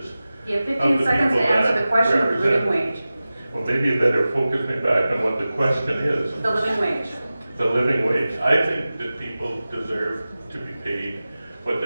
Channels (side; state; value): both; inverted; correlation -0.96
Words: You have 15 seconds to answer the question of the living wage. Well, maybe you better focus me back on what the question is. The living wage. The living wage. I think that people deserve to be paid what